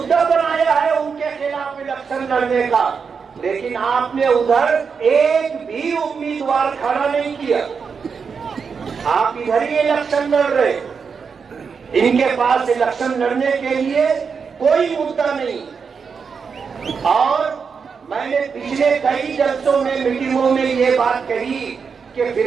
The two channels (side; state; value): left; quieter; 5.8 dB